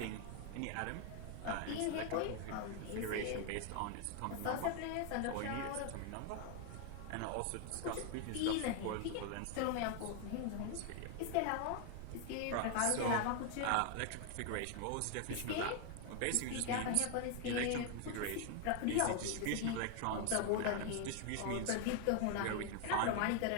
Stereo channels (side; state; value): both; different; correlation 0.01